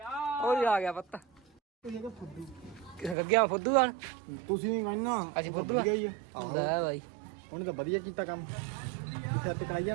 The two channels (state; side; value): drops out; left; at 3.2 s